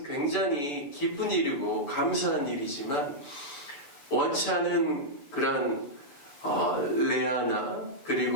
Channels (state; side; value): late; right; 6.9 ms